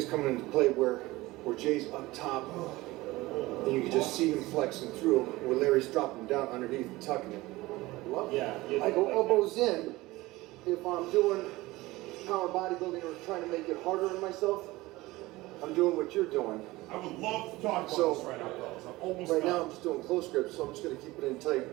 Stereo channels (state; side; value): quieter; left; 19.6 dB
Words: coming into play where Jay's up top, and you can just see him flexing through, where Larry's dropping down underneath and tucking it. Yeah. I go elbows in if I'm doing power bodybuilding or trying to make it harder on myself. I'm doing what you're doing. I would love to talk about this right now, fellas. I'm almost Right done. now I'm just doing close grips, so I'm just going to keep it in tight